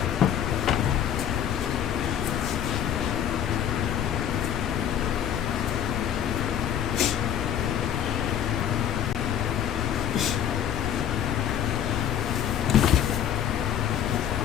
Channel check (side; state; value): right; quieter; 9.7 dB